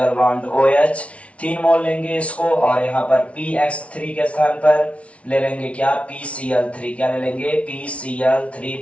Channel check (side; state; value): right; late; 0.063 ms